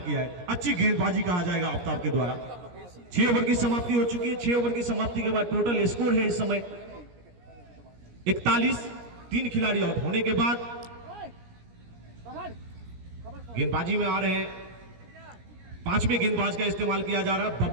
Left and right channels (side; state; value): left; late; 17 ms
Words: है। अच्छी गेंदबाजी कहा जाएगा आफ्ताब के द्वारा। 6 ओवर की समाप्ति हो चुकी है। 6 ओवर की समाप्ति के बाद टोटल स्कोर है इस समय 41। 3 खिलाड़ी आउट होने के बाद गेंदबाजी में आ रहे हैं, 5वें गेंदबाज का इस्तेमाल किया जा रहा है।